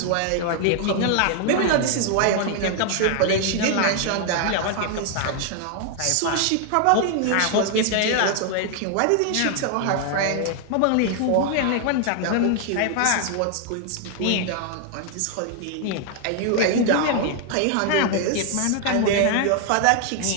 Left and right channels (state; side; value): different; both; correlation 0.00